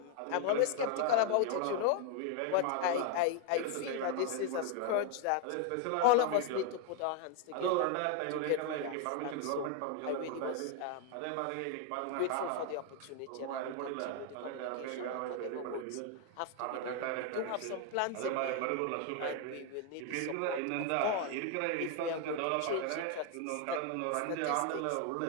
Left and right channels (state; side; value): different; both; correlation 0.01